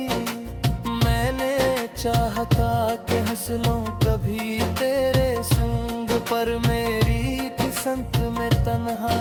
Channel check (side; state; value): both; identical; correlation 1.00